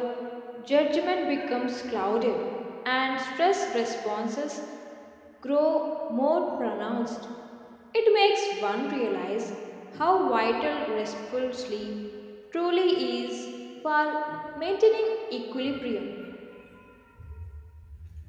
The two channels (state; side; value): identical; both; correlation 1.00